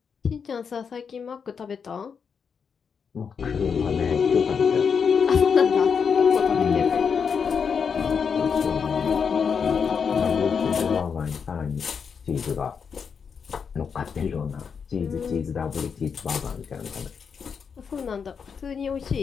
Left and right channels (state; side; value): quieter; right; 6.3 dB